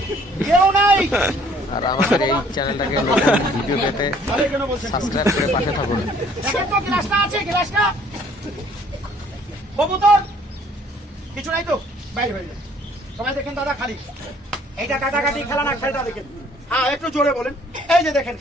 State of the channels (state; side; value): normal; both; correlation 0.59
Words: কেউ নাই। আর আমাদের এই চ্যানেলটাকে নতুন ভিডিও পেতে সাবস্ক্রাইব করে পাশে থাকুন। দেখেন তো গ্লাসটা আছে, গ্লাসটা কবুতর কিছু নাই তো, বাইরে হয়ে যায়। সবাই দেখেন দাদা, খালি এইটা কাটাকাটি খেলা না, খেলটা দেখেন। হ্যাঁ, একটু জোরে বলেন। এই যে দেখেন